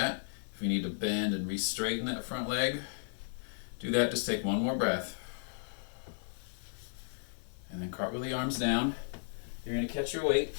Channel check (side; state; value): right; silent; 55 dB below the other